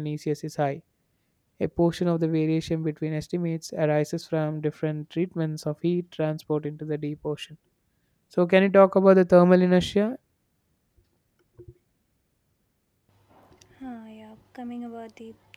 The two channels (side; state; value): both; identical; correlation 1.00